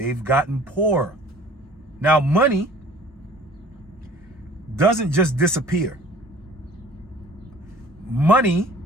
gotten poorer. Now, money doesn't just disappear. Money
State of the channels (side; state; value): both; normal; correlation 0.49